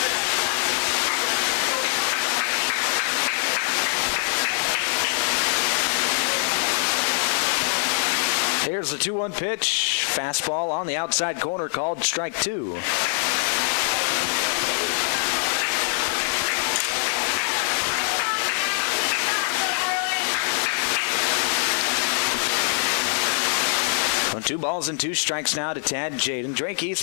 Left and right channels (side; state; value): right; silent; digital silence